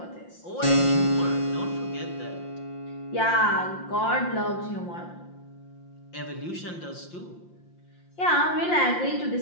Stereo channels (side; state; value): right; late; 5.7 ms